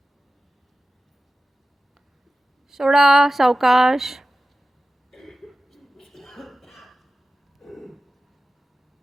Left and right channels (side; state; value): both; normal; correlation 0.94